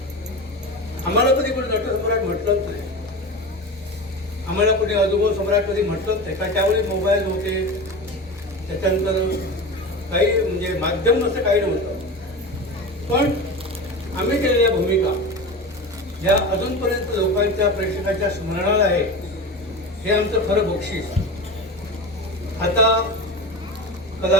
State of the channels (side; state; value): both; normal; correlation 0.27